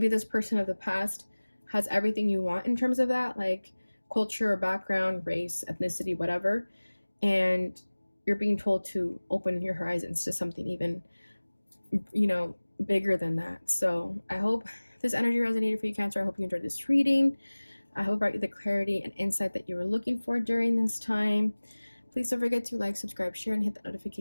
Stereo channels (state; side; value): inverted; both; correlation -1.00